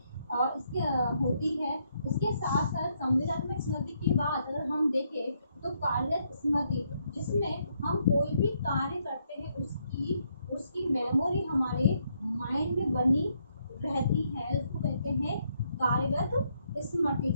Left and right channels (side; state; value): both; inverted; correlation -0.74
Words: और इसके साथ साथ संवेदनात्मक स्मृति के बाद अगर हम देखें तो कार्यरत स्मृति, जिसमें हम कोई भी कार्य करते हैं उसकी मेमोरी हमारे माइंड में बनी रहती है, उसको कहते हैं कार्यरत स्मृति।